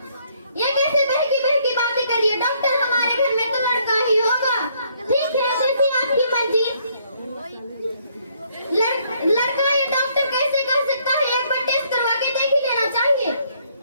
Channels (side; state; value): both; inverted; correlation -0.67